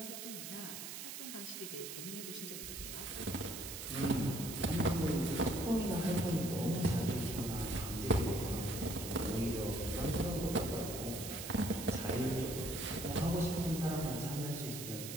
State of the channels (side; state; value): right; noise; hiss, 8 dB below the sound